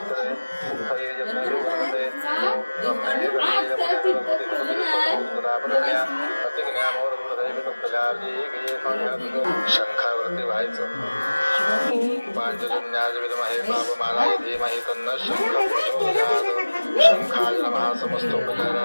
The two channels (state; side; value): inverted; both; correlation -1.00